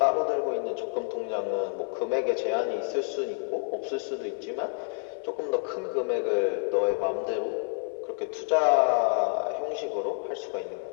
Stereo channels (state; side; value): silent; right; digital silence